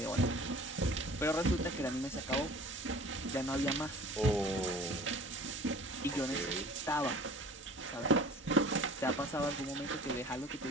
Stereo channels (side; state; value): both; normal; correlation 0.46